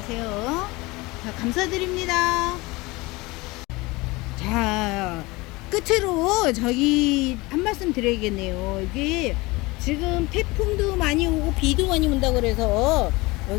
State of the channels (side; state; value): right; quieter; 22.8 dB